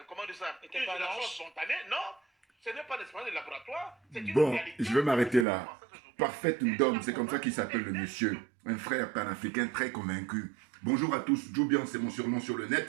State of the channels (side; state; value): left; drops out; at 5.5 s